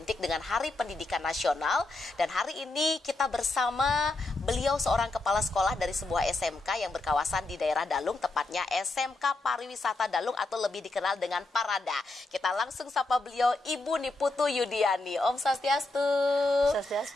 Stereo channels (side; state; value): right; quieter; 3.0 dB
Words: dengan Hari Pendidikan Nasional. Dan hari ini kita bersama beliau seorang kepala sekolah dari sebuah SMK yang berkawasan di daerah Dalung, tepatnya SMK Pariwisata Dalung atau lebih dikenal dengan Parada. Kita langsung sapa beliau, Ibu Niputu Yudiani. Om Swastiastu.